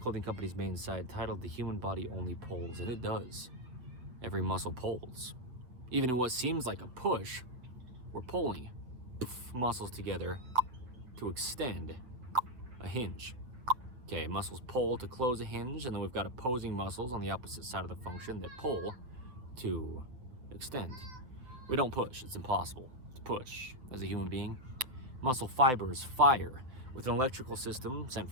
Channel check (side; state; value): left; late; 8.1 ms